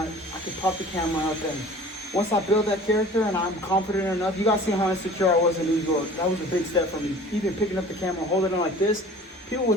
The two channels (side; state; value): both; normal; correlation 0.45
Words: I can pop the camera up, and once I build that character and I'm confident enough, you guys see how insecure I was in New York. That was a big step for me. Even picking up the camera and holding it like this, people would